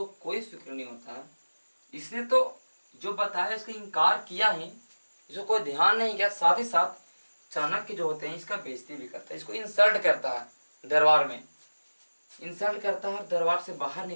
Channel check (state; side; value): inverted; both; correlation -1.00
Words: कोई फिक्र नहीं होता है। इसने तो जो बताया इसका इनकार किया ही, इसको कोई ध्यान नहीं किया। साथ ही साथ चाणक्य जो होते हैं इसका बेइज्जती भी करता है, इसको इंसल्ट करता है दरबार में, इंसल्ट करता है और दरबार से बाहर